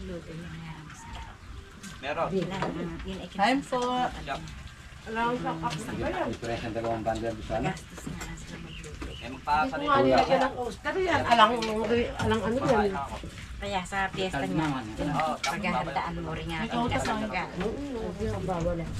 yung mga Meron. yun ay Time po. Press ng 2 bundle sa ano? gastos nga sila magluto. Eh, magpapalit. Kaya sa piyesta niya, paghahandaan mo rin nga ang kasangga.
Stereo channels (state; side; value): identical; both; correlation 1.00